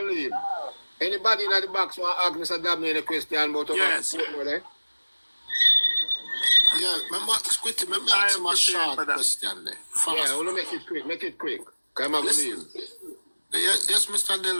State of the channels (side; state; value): both; inverted; correlation -1.00